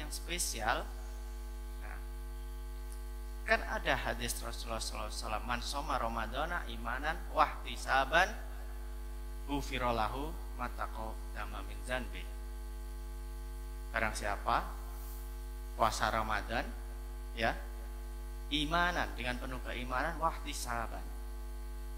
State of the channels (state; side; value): identical; both; correlation 1.00